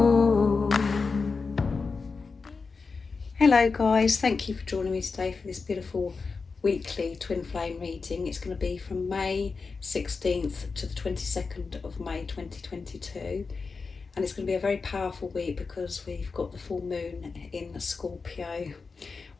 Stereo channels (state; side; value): quieter; right; 4.6 dB